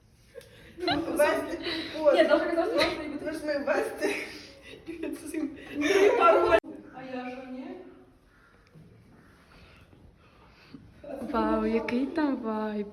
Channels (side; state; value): both; identical; correlation 1.00